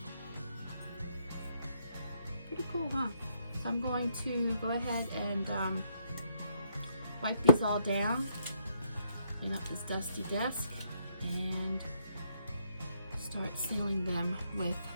Pretty cool, huh? So I'm going to go ahead and wipe these all down. Clean up this dusty desk. And start sealing them with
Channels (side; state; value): both; inverted; correlation -0.73